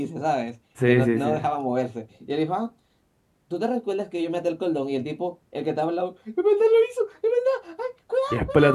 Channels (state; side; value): identical; both; correlation 1.00